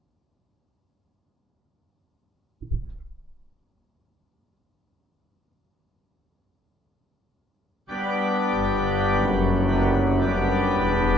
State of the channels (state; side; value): normal; both; correlation 0.69